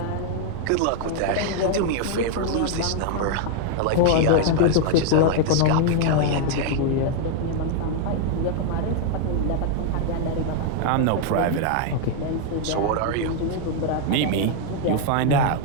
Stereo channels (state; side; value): different; both; correlation 0.00